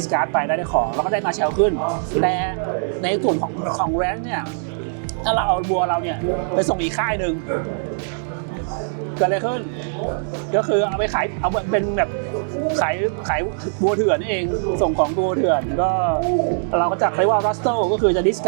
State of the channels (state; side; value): silent; left; digital silence